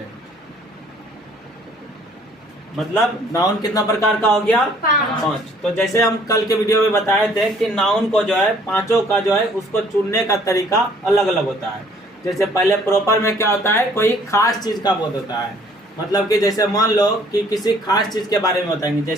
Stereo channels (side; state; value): both; normal; correlation 0.59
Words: मतलब नाउन कितना प्रकार का हो गया? 5। तो जैसे हम कल के वीडियो में बताए थे कि नाउन को जो है पांचों का जो है उसको चुनने का तरीका अलग अलग होता है। जैसे पहले प्रॉपर में क्या होता है? कोई खास चीज का बोध होता है। मतलब कि जैसे मान लो कि किसी खास चीज के बारे में बताएंगे।